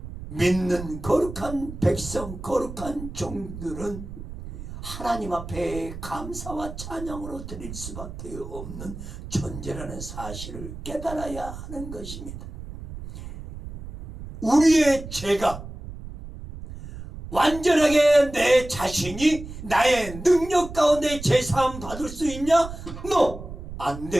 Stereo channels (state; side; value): noise; right; rumble, 11 dB below the sound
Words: 믿는 거룩한 백성, 거룩한 종들은 하나님 앞에 감사와 찬양으로 드릴 수밖에 없는 존재라는 사실을 깨달아야 하는 것입니다. 우리의 죄가 완전하게 내 자신이 나의 능력 가운데 제사함 받을 수 있냐? No! 안